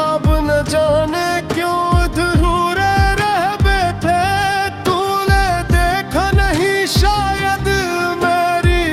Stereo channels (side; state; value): both; identical; correlation 1.00